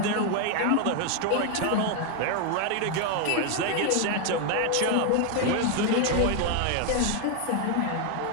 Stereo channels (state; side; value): different; both; correlation 0.01